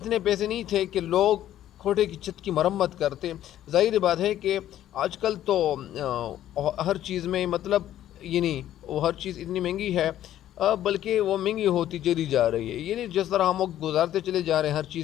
پیسے نہیں تھے کہ لوگ کوٹھے کی چھت کی مرمت کرتے۔ ظاہر بات ہے کہ آج کل تو ہر چیز میں مطلب یعنی وہ ہر چیز اتنی مہنگی ہے، بلکہ وہ مہنگی ہوتی چلی جا رہی ہے، یعنی جس طرح ہم وقت گزارتے چلے جا رہے ہیں ہر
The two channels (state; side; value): quieter; right; 12.2 dB